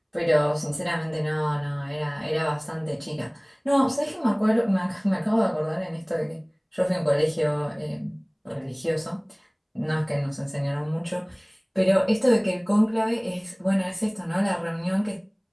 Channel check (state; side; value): identical; both; correlation 1.00